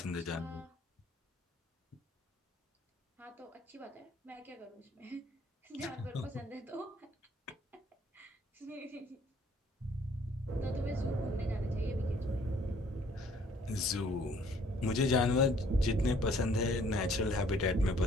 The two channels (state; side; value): normal; both; correlation 0.60